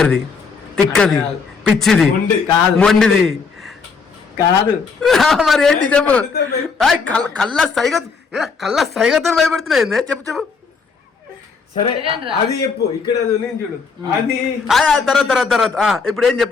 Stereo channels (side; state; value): right; quieter; 5.1 dB